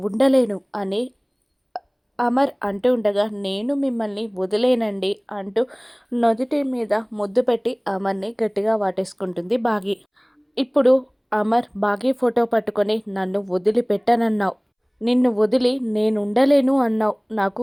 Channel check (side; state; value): both; identical; correlation 1.00